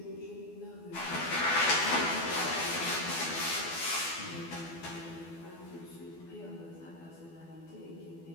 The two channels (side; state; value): right; late; 12 ms